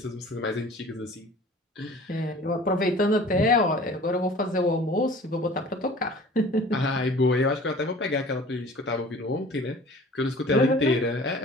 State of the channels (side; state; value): both; normal; correlation 0.46